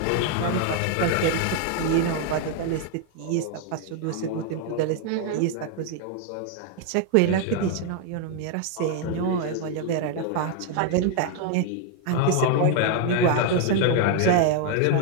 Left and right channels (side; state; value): both; different; correlation 0.00